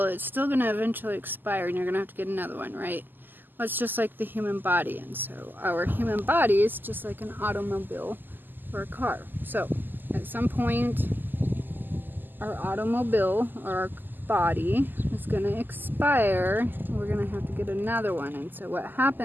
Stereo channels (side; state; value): left; late; 0.090 ms